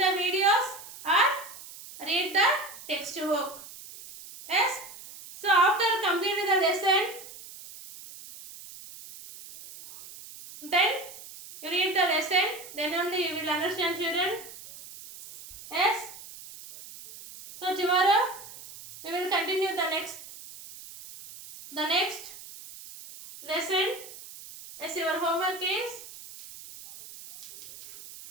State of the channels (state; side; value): noise; right; hiss, 16 dB below the sound